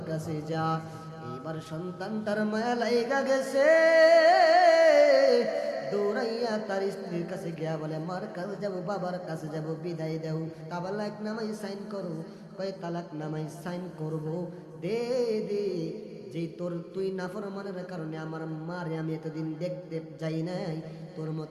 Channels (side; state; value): both; identical; correlation 1.00